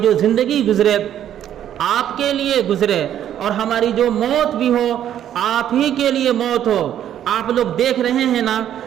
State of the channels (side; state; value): left; quieter; 10.6 dB